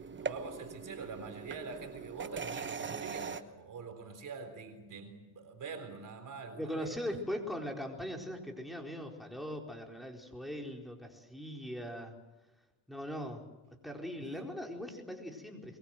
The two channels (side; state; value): both; normal; correlation 0.35